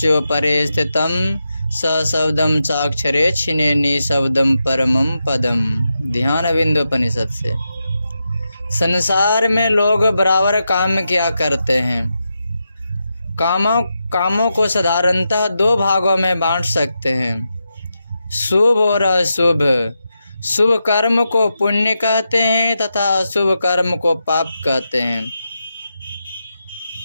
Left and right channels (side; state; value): both; inverted; correlation -0.87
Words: परे स्थितम स शब्दम चाक्षरे छिने निशब्दम परमम पदम। ध्यान बिंदोपनिषद से। संसार में लोग बराबर काम किया करते हैं। कामों को साधारणतः दो भागों में बांट सकते हैं, शुभ और अशुभ। शुभ कर्म को पुण्य कहते हैं तथा अशुभ कर्म को पाप कहते हैं।